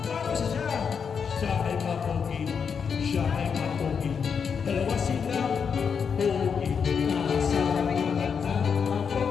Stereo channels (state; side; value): quieter; right; 6.5 dB